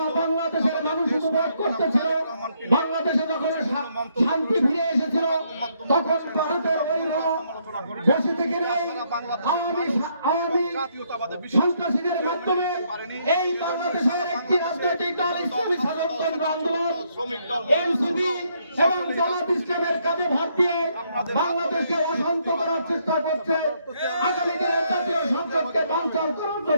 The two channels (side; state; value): both; inverted; correlation -0.72